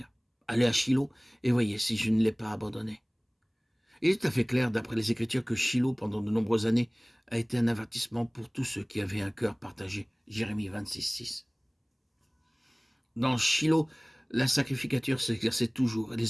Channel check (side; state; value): both; identical; correlation 1.00